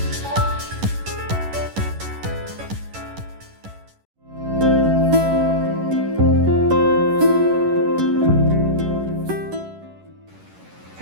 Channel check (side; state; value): left; late; 11 ms